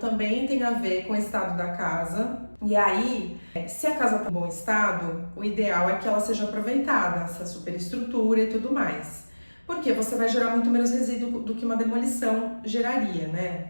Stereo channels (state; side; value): inverted; both; correlation -1.00